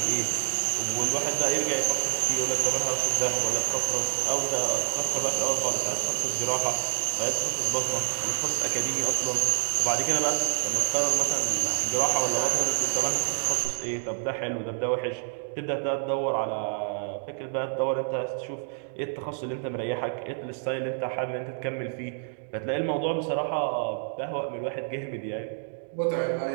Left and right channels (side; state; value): left; silent; digital silence